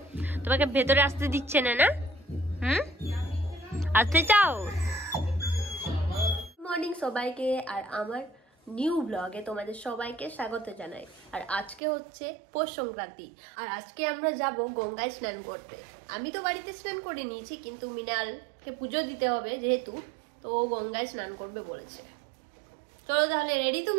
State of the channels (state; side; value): drops out; left; at 11.8 s